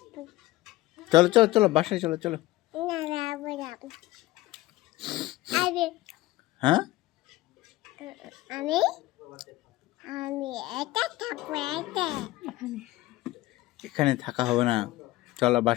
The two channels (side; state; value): right; quieter; 17.6 dB